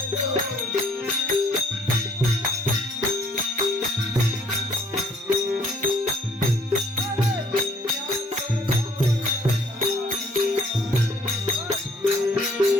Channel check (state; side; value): normal; both; correlation 0.61